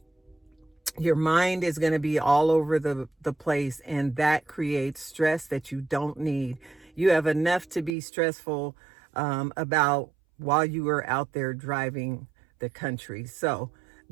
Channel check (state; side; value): drops out; left; at 8.0 s